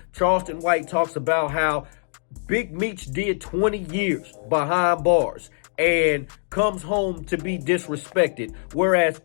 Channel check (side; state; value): right; silent; digital silence